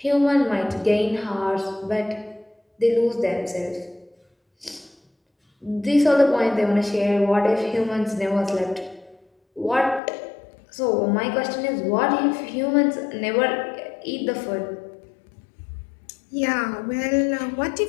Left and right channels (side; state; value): right; drops out; at 10.0 s